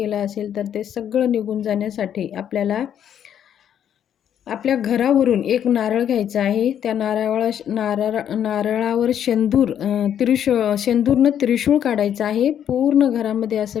असेल, तर ते सगळं निघून जाण्यासाठी आपल्याला आपल्या घरावरून एक नारळ घ्यायचा आहे. त्या नारळावर शेंदूरनं त्रिशूळ काढायचं आहे. पूर्ण घरामध्ये असं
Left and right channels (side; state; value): right; quieter; 9.5 dB